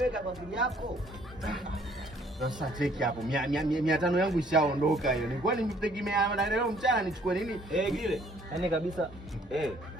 kwa akili yako. Sasa cheki hapo 500 yangu ishaondoka hiyo. Nilikuwa nimtegemea leo mchana nichukue nini? Gile. Yaani kabisa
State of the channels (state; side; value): normal; both; correlation 0.61